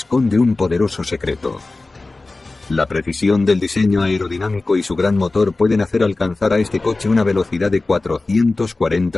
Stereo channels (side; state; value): right; quieter; 3.3 dB